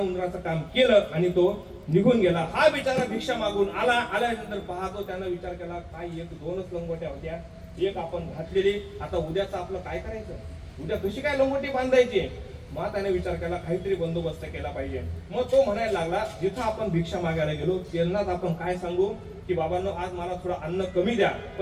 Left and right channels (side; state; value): both; identical; correlation 1.00